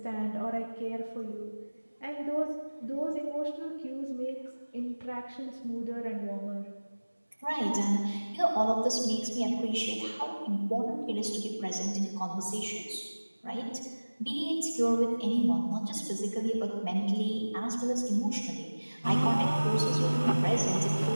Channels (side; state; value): both; inverted; correlation -1.00